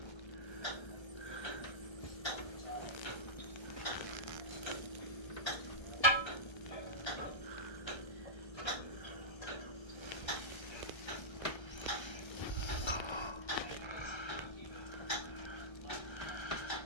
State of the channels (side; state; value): right; late; 1.3 ms